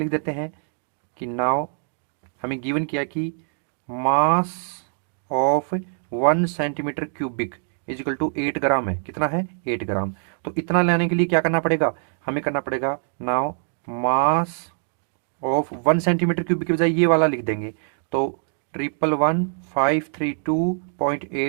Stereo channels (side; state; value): left; silent; digital silence